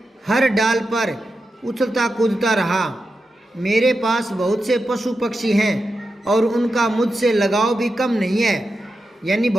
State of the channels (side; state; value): both; normal; correlation 0.89